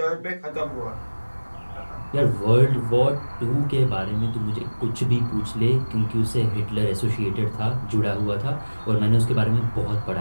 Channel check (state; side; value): inverted; both; correlation -1.00